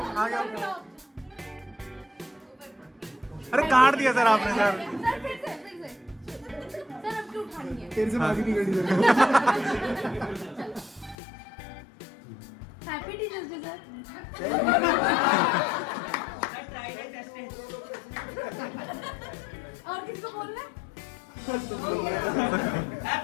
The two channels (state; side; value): drops out; right; at 11.2 s